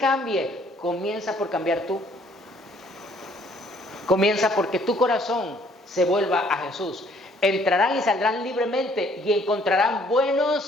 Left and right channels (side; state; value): both; normal; correlation 0.62